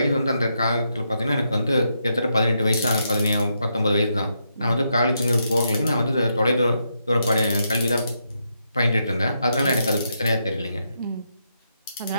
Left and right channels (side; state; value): both; inverted; correlation -0.81